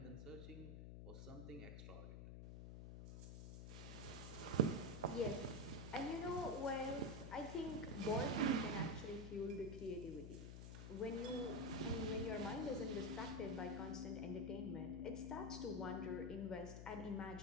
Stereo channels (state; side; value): noise; left; hum, 8 dB below the sound